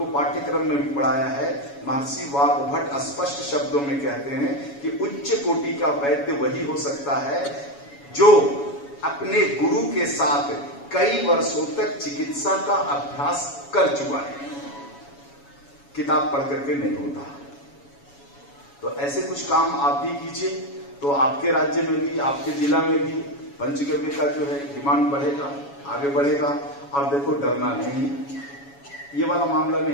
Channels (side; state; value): right; late; 7.1 ms